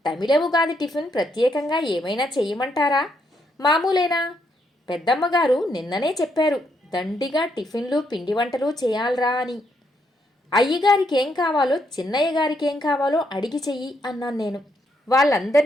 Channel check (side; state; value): both; normal; correlation 0.76